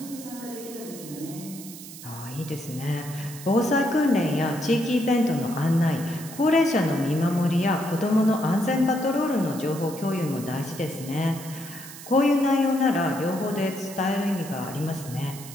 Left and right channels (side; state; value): right; noise; hiss, 14 dB below the sound